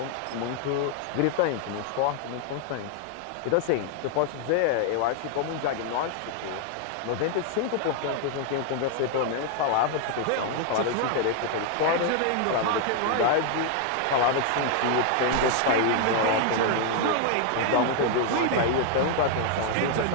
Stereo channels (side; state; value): both; different; correlation 0.00